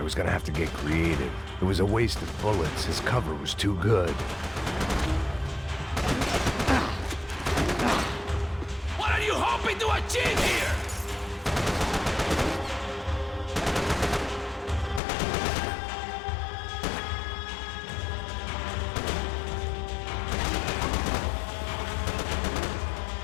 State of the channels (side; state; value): right; drops out; at 15.0 s